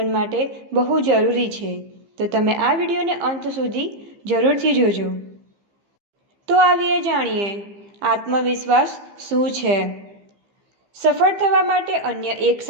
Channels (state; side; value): late; left; 15 ms